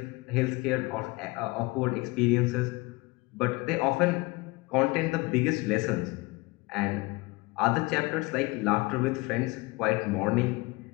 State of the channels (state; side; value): quieter; right; 23.6 dB